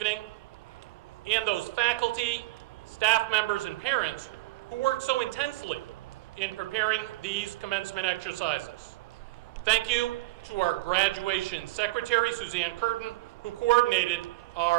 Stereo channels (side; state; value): left; quieter; 19.9 dB